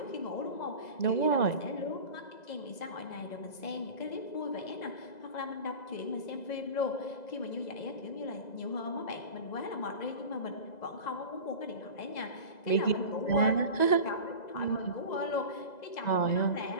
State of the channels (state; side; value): late; right; 2.0 ms